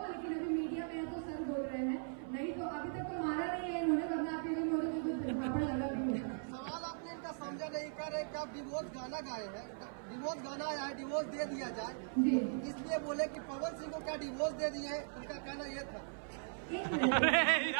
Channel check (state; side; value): silent; left; 52 dB below the other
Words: लेकिन अभी मीडिया में है तो सर बोल रहे हैं, नहीं तो अभी तक तो मारा नहीं है इन्होंने, वरना आपके लिए मोरे को कुछ झापड़ लगा भी होता। सवाल आपने इनका समझा नहीं कर रहे कि आप डिवोर्स गाना गाए हैं, डिवोर्स गाना आया है, डिवोर्स दे दिया जाए, जी इसलिए बोले कि पवन सिंह को क्या डिवोर्स दे दिए हैं, उनका कहना ये था। एक मिनट। अरे